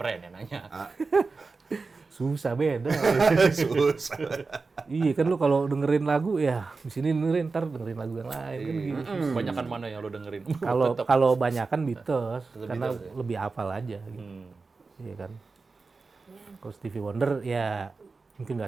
yang nanya. susah beda. Susah. Iya kan lu kalau dengerin lagu ya di sini dengerin, ntar dengerin lagu yang lain kan gitu. Banyakan mana yang lo dengerin? Kalau banyakan Beatles karena Beatles, ya? lebih hafal aja gitu. Iya kan. Kalau Stevie Wonder ya mungkin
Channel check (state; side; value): quieter; left; 4.2 dB